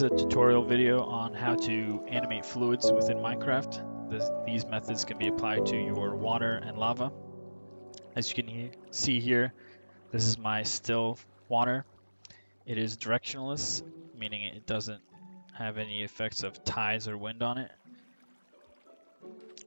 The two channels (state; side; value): inverted; both; correlation -1.00